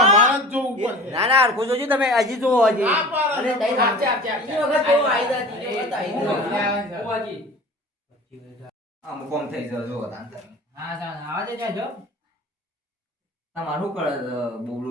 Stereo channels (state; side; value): normal; both; correlation 0.40